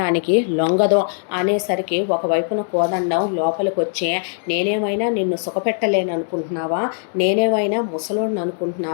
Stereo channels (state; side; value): silent; right; digital silence